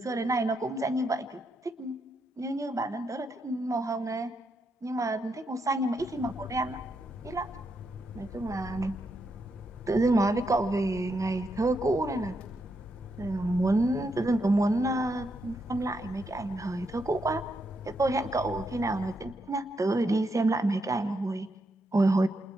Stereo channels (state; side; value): normal; both; correlation 0.81